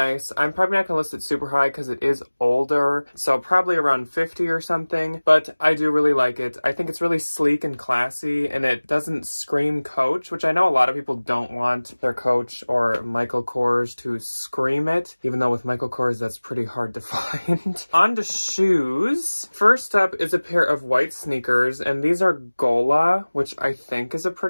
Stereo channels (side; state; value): both; inverted; correlation -1.00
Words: I'm probably not gonna list it super high because it is older. So probably around 50 or something, but I do really like it. I think it's really sleek and classy, and it doesn't scream Coach, which I know a lot of people don't want their Coach or Michael Kors to scream it, even though with Michael Kors that's pretty hard to find. On to shoes. First up is a pair of white sneakers, and these are Gola, which I think is a